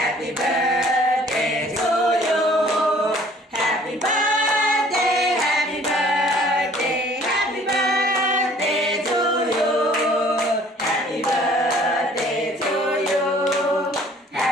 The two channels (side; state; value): both; normal; correlation 0.54